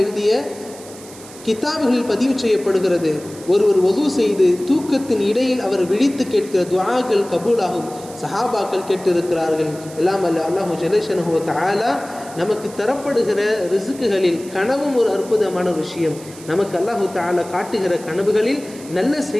எழுதிய கிதாபுகளில் பதிவு செய்யப்படுகிறது. ஒருவர் ஒது செய்து தூக்கத்தின் இடையில் அவர் விழித்து கேட்கிற துஆக்கள் கபூலாகும் சஹாபாக்கள் கேட்டிருக்கிறார்கள். எல்லாம் அல்ல அல்லாஹு ஜல்லஷனஹு வ தஆலா நமக்கு தரப்படுகிற ரிசுக்குகளில் கனவும் ஒரு அற்புதமான விஷயம். நமக்கு அல்லாஹு தஆலா காட்டுகிற கனவுகளில் நல்ல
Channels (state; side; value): noise; right; hiss, 18 dB below the sound